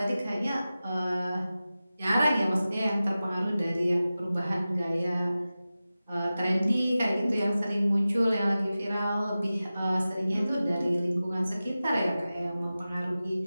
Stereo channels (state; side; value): inverted; both; correlation -0.95